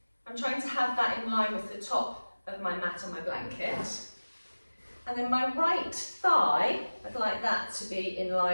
I'm trying to have that in line with the top of my mat and my blanket. And then my right thigh, I'd like that to be in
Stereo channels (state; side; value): inverted; both; correlation -1.00